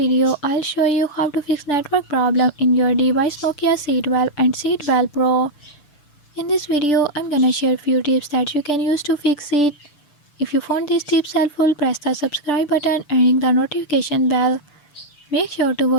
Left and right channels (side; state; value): right; late; 6.8 ms